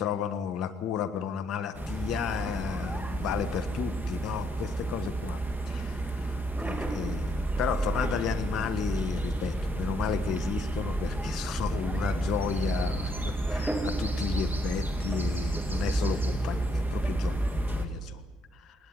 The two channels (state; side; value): normal; both; correlation 0.73